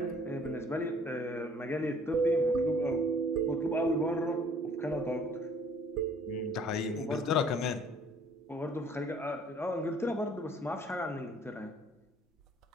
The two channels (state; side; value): normal; both; correlation 0.57